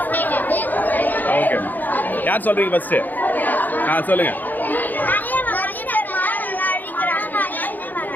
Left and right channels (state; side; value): late; right; 0.085 ms